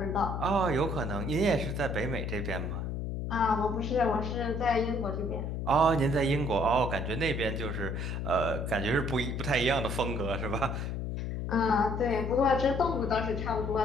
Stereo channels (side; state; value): left; noise; hum, 3 dB below the sound